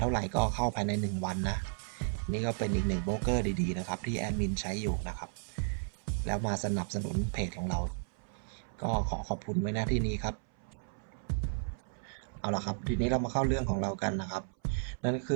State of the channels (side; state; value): left; silent; 55 dB below the other